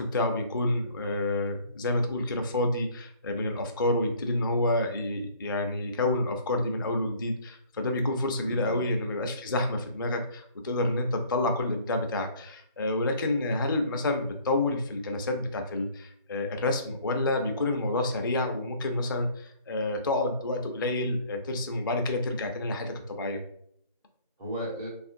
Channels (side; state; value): both; inverted; correlation -0.54